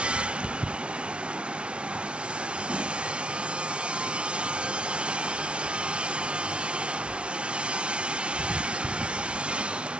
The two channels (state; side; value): late; left; 0.059 ms